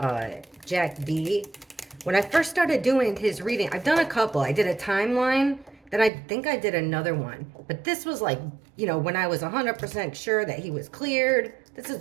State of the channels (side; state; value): left; drops out; at 6.1 s